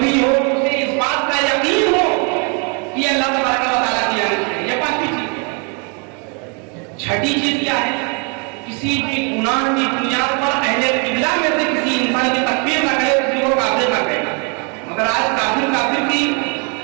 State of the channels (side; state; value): left; quieter; 35.7 dB